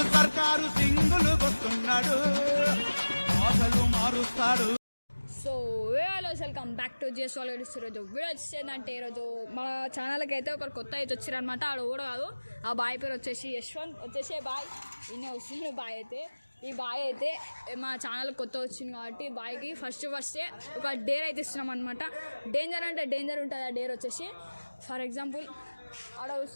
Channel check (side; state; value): both; inverted; correlation -1.00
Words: సర్కారు సింగులు వస్తున్నాడు, ఆశలు మారుస్తాడు. So hello welcome back to GS వాల్గడ్స్. ఈరోజు వీడియో వచ్చేసిందంటే ఈరోజు మన ఛానల్కి అయితే ఒకరు కొత్త అయితే వచ్చారనమాట. ఆడ కూడా కాదు, ఆ బాయ్ పేరు వచ్చేసి యశ్వంత్ వచ్చేసి బాయ్ ఈయన వస్తుంది. బాయ్ అయితే ఈ బాయ్ అయితే మా ఛానల్ కొత్త వచ్చింది కాబట్టి బాయ్కి ఫస్టే ఒక డేర్ అయితే ఇస్తున్నాం అనమాట. డేంజర్ అంటే డేంజర్ ఉంటుంది. ఆ డేర్ వచ్చేసి ఫర్ ఎగ్జాంపుల్ ఆడ